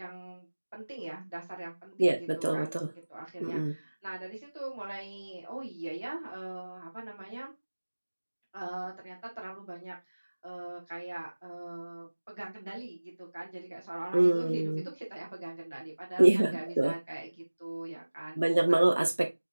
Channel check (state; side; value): inverted; both; correlation -1.00